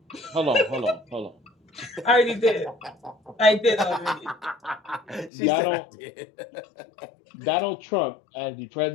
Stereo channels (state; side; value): drops out; right; at 5.3 s